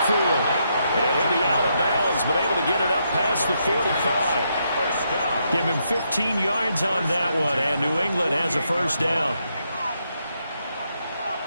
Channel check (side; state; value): both; inverted; correlation -0.79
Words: And he'll be out of bounds, but able to get it up past the 45. Give him 15 yards on that one, and New England has a first down.